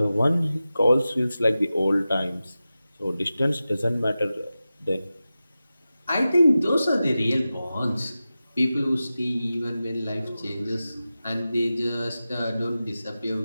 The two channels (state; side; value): inverted; both; correlation -0.94